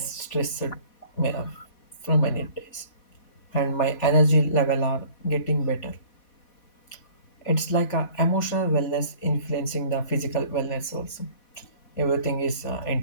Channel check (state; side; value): late; right; 4.2 ms